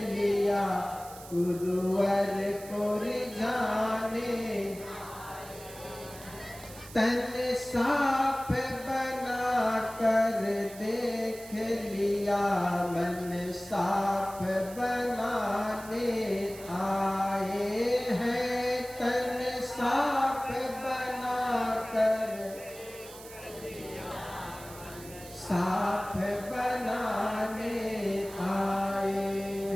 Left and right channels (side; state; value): right; noise; hiss, 17 dB below the sound